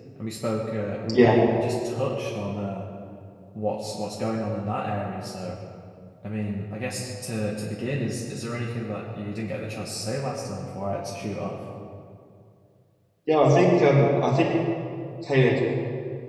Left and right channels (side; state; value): both; identical; correlation 1.00